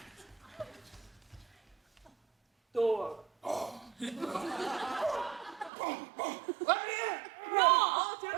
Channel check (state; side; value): drops out; left; at 5.7 s